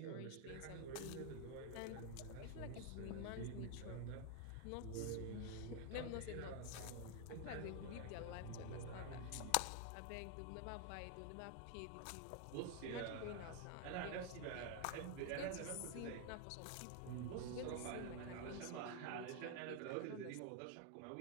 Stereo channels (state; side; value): different; both; correlation 0.01